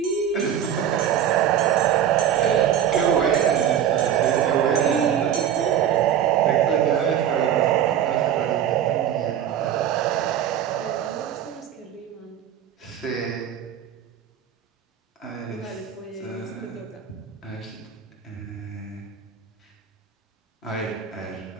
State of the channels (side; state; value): left; quieter; 9.7 dB